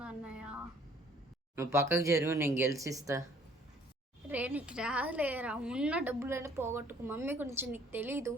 అన్నయ్య. నువ్వు పక్కకు జరుగు, నేను గెలిచిస్తా. రే నీకు రాలేరా, ఉన్న డబ్బులన్నీ పోగొట్టుకు. మమ్మీ గురించి నీకు తెలీదు.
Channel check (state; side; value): normal; both; correlation 0.58